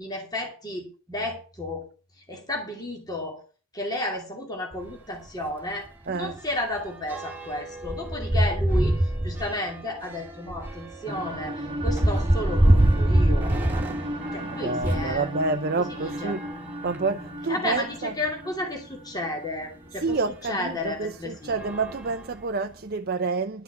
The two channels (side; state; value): both; normal; correlation 0.56